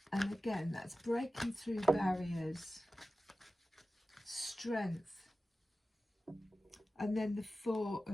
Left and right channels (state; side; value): normal; both; correlation 0.95